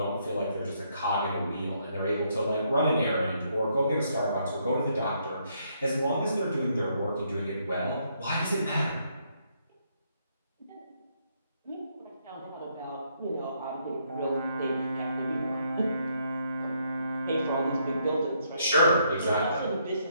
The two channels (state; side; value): inverted; both; correlation -0.73